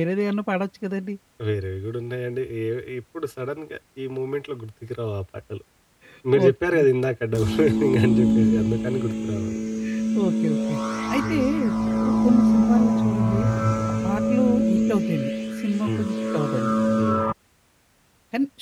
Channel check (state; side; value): identical; both; correlation 1.00